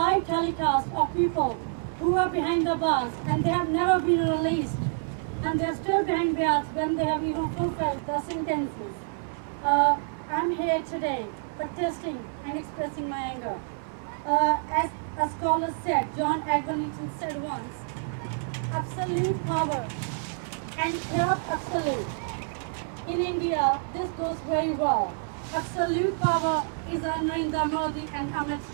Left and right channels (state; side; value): silent; left; 60 dB below the other